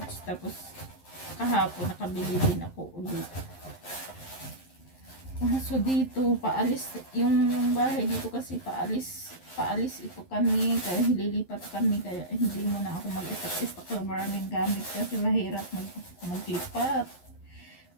Tapos kahapon nakabili din ako ulit. So dito paalis yung bahay dito kasi paalis ito kami kaya lilipat kami kaya hindi mo na ako mag-istak ng maraming gamit kasi mahirap maglipat.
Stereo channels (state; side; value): late; right; 11 ms